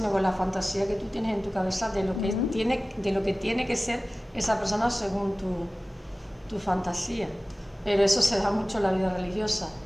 con la fantasía que tú tienes en tu cabeza de lo que, tiene que ser esa persona según tu fantasía. Pero eso se da mucho en la vida religiosa,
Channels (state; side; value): normal; both; correlation 0.97